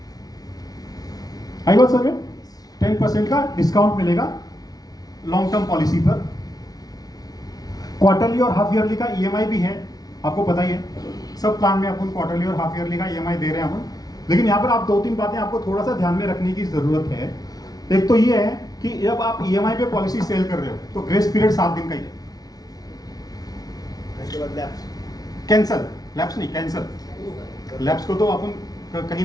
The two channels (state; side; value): late; right; 0.18 ms